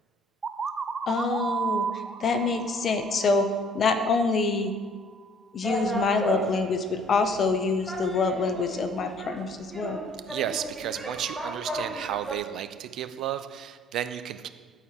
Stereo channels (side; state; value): both; normal; correlation 0.57